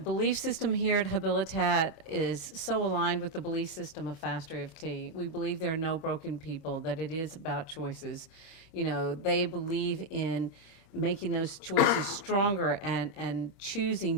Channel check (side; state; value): right; late; 26 ms